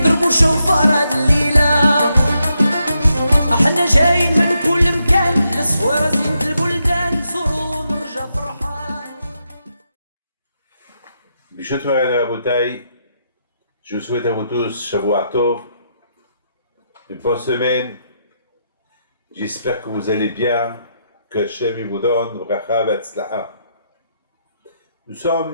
شوفار هاد الليلة. احنا جايين من كل مكان، الصويرة زينة البلدان، نزورو ونرجع فرحان. Bishut Moran Rabotai, je vous souhaite à vous tous Shavuot Tov, une bonne semaine. J'espère que vous allez bien, que Hashem vous donne bracha v'atzlaha. Nous sommes,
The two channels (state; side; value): inverted; both; correlation -0.82